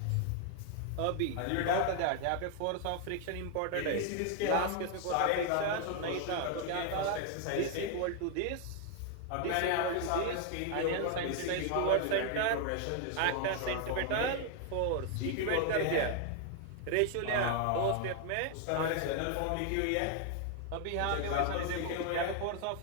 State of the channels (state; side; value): different; both; correlation 0.00